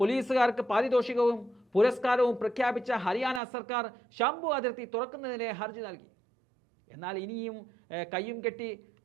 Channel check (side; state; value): left; drops out; at 3.4 s